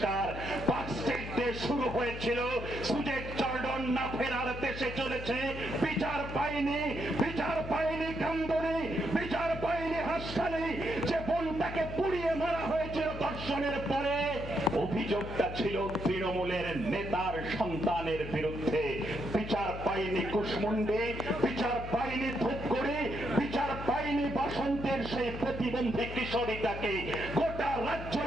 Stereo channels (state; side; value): noise; left; hum, 9 dB below the sound